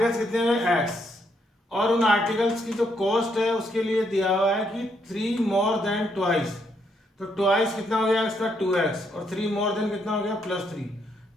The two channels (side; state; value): both; normal; correlation 0.75